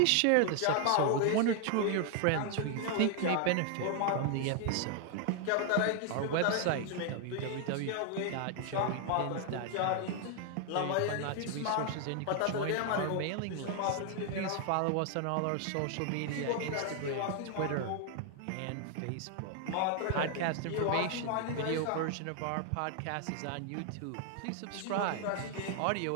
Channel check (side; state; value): both; different; correlation 0.00